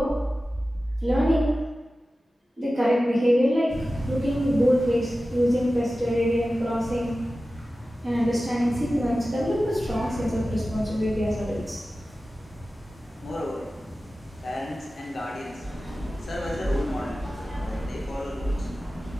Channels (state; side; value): normal; both; correlation 0.95